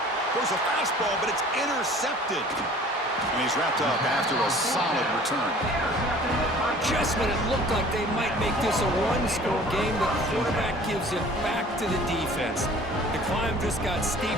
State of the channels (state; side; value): normal; both; correlation 0.49